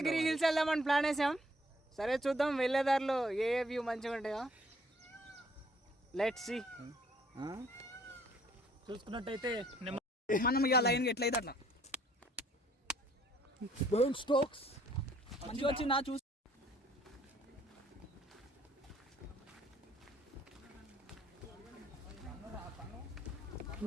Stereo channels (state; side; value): normal; both; correlation 0.62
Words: hills వెళ్దామని ప్లాన్ వేసాం. సరే చూద్దాం వెళ్ళేదారిలో ఏ వ్యూ మంచిగా ఉంటాయో. Let's see. చూసుకున్నట్టయితే మనం ఇక లైన్ ఎట్లయితే అట్లా బర్న్ స్టోక్స్ మంచిగా వచ్చి నా చూసి